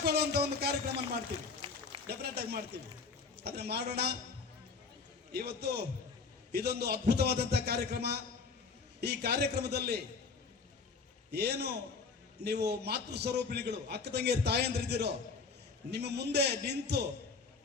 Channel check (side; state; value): right; quieter; 4.8 dB